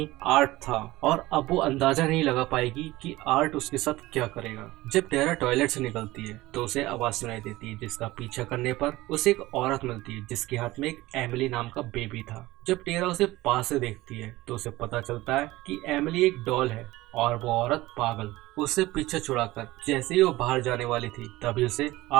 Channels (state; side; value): quieter; left; 18.4 dB